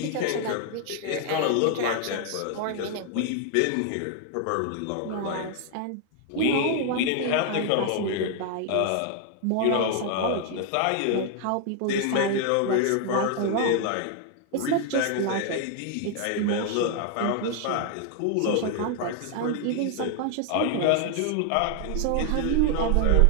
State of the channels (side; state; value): both; different; correlation 0.00